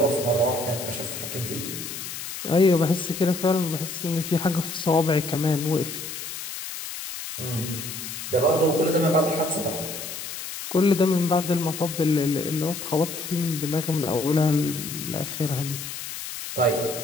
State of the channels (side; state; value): left; noise; hiss, 8 dB below the sound